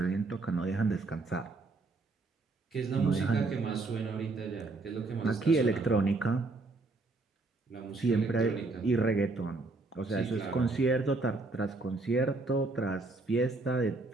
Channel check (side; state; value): left; quieter; 3.4 dB